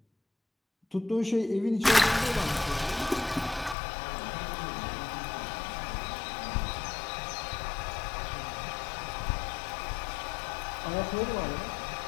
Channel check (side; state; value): right; drops out; at 3.8 s